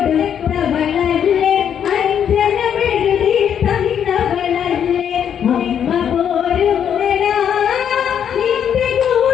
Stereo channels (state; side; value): quieter; right; 8.7 dB